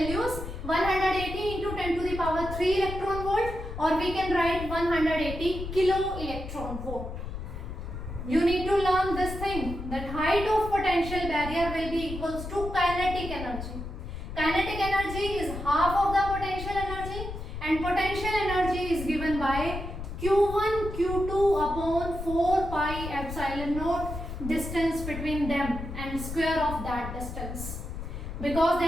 180 into 10 to the power 3 electron volt, or we can write 180 kilo electron volt. You need to learn this thing, that height of potential barrier will be equals to kinetic energy. Kinetic energy is half of the potential energy, and potential energy is given by Q1 Q2 upon 4 pi epsilon naught, distance between them and square of that distance. Because they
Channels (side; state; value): left; noise; rumble, 8 dB below the sound